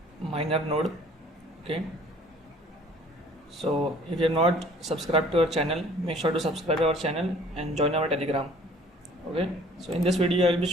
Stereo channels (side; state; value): both; normal; correlation 0.54